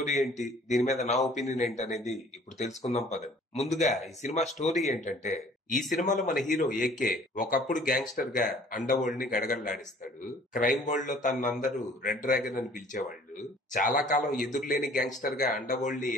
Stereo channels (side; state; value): both; normal; correlation 0.53